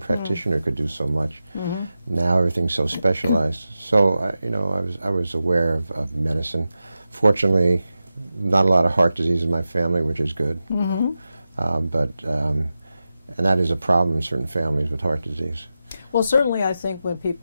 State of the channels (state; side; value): inverted; both; correlation -0.92